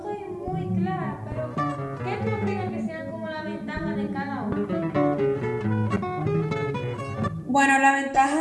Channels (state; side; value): identical; both; correlation 1.00